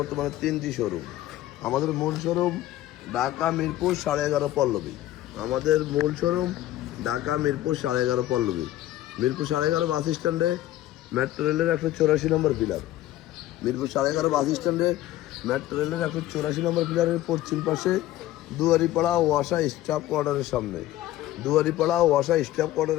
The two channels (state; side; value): quieter; right; 14.5 dB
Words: আমাদের মূল শোরুম ঢাকা মিরপুর 11.5 পল্লবী। মিরপুর 11.5 বাস স্ট্যান্ডে মেট্রো রেলের 184 নম্বর পিলার। মিরপুর 11.5 বাস স্ট্যান্ডে মেট্রো রেলের 184 নম্বর পিলারের পশ্চিম পাশে দুয়ারিপাড়া ওয়াসা স্টাফ কোয়ার্টারের